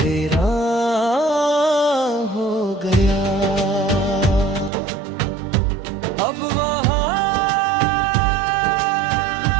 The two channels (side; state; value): left; drops out; at 4.7 s